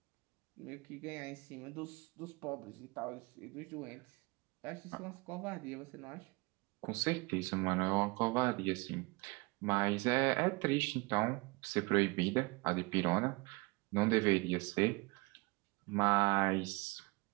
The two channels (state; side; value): quieter; left; 26.4 dB